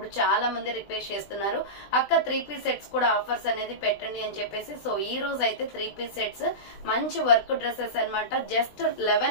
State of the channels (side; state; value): right; late; 20 ms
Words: చాలా మంది రిక్వెస్ట్ చేస్తున్నారు, అక్క 3 పీస్ సెట్స్ కూడా ఆఫర్స్ అనేది పెట్టండి అని చెప్పేసి. సో ఈ రోజు అయితే 3 పీస్ సెట్స్ మంచి వర్క్ డ్రెస్సెస్ అన్నమాట. జస్ట్